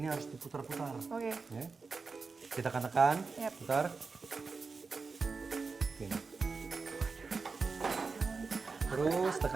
harus diputar-putar. Oke. Ya. Kita tekan, putar. Gini. Terus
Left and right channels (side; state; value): left; quieter; 4.5 dB